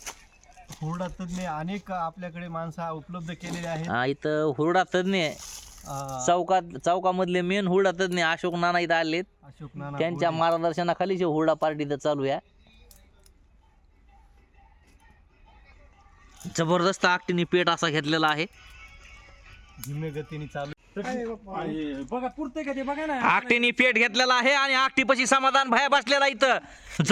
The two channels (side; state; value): both; identical; correlation 1.00